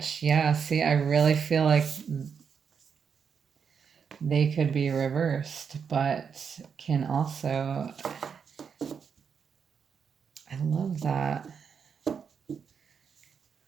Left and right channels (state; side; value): quieter; left; 6.6 dB